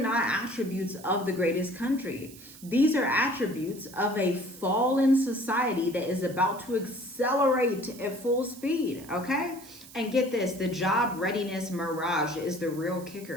attributes of the greatest country. These are attributes of a fallen society that is about to accelerate at full speed, okay? And get this, the job readiness mirage is the real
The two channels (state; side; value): noise; right; hiss, 19 dB below the sound